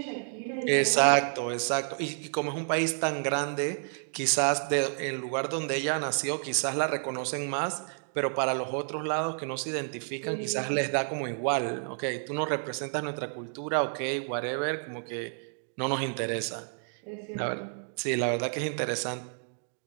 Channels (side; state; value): left; silent; 58 dB below the other